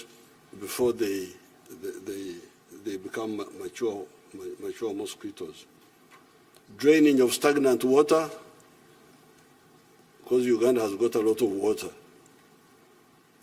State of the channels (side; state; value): both; identical; correlation 1.00